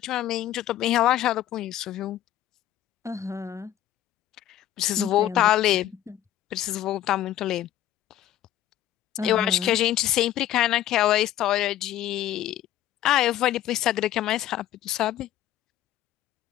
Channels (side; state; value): right; quieter; 12.8 dB